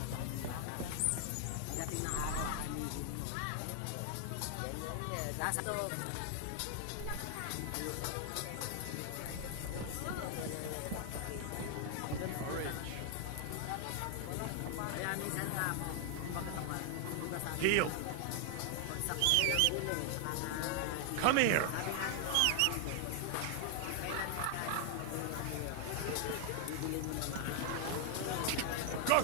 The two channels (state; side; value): different; both; correlation 0.00